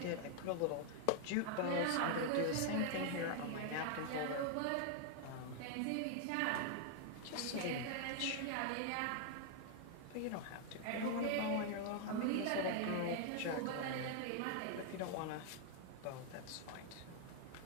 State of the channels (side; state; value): both; different; correlation 0.00